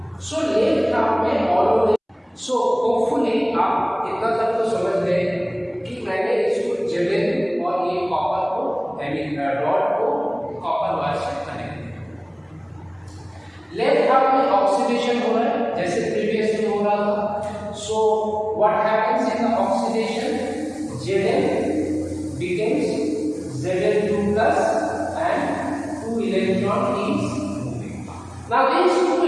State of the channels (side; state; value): both; identical; correlation 1.00